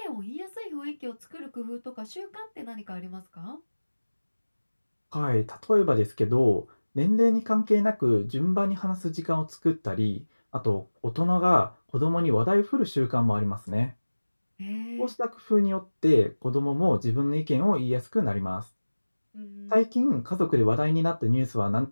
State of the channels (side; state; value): both; inverted; correlation -1.00